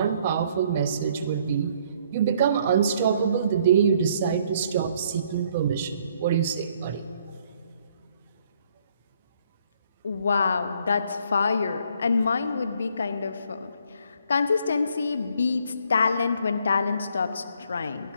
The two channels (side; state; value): both; inverted; correlation -0.65